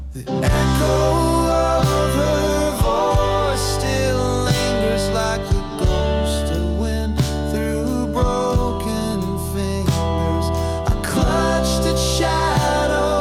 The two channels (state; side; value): identical; both; correlation 1.00